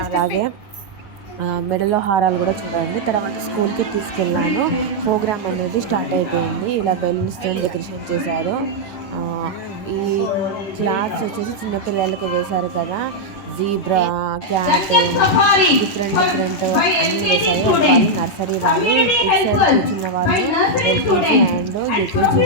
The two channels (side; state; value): right; late; 9.9 ms